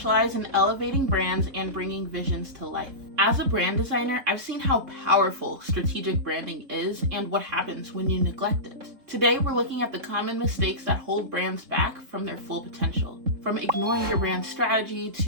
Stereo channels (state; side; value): late; left; 3.9 ms